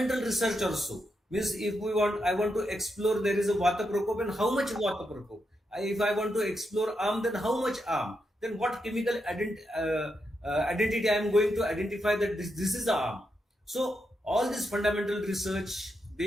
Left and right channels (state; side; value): normal; both; correlation 0.84